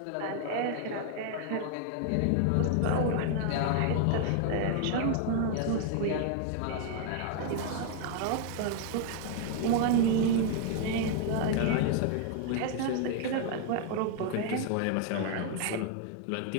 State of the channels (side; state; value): both; different; correlation 0.00